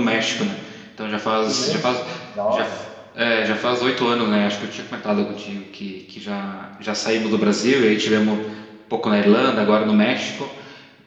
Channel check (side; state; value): both; identical; correlation 1.00